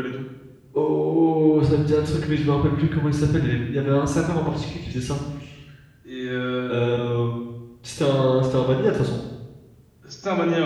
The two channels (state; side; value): identical; both; correlation 1.00